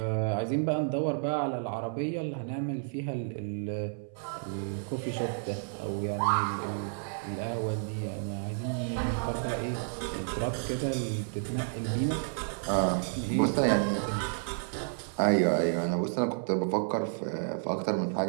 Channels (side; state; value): left; silent; 57 dB below the other